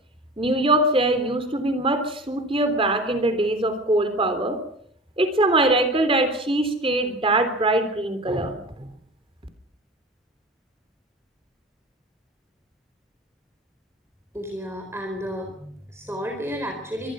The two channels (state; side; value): normal; both; correlation 0.36